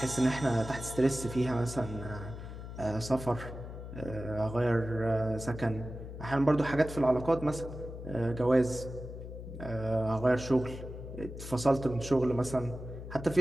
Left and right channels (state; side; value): noise; left; hum, 10 dB below the sound